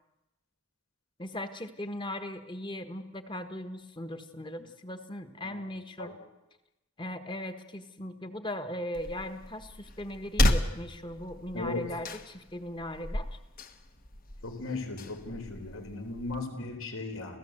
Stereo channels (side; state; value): both; normal; correlation 0.67